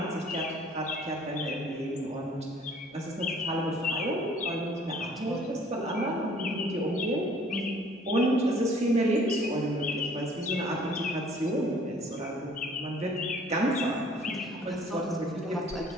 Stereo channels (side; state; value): both; normal; correlation 0.55